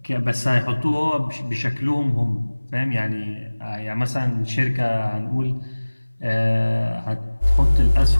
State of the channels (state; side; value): inverted; both; correlation -1.00